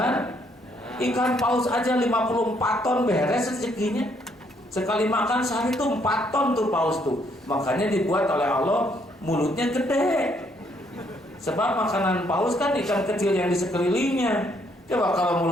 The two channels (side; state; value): both; normal; correlation 0.70